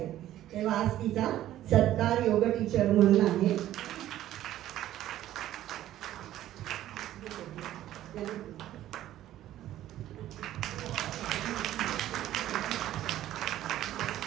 तेव्हा आज तिचा सत्कार योग टीचर म्हणून आहे.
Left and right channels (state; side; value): quieter; left; 13.2 dB